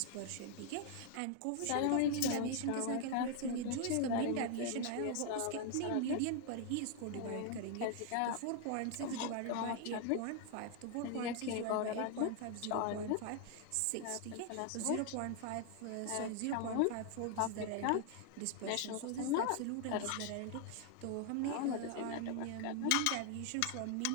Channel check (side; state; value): both; different; correlation 0.00